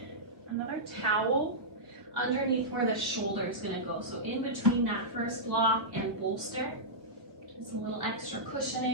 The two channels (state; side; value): late; left; 1.4 ms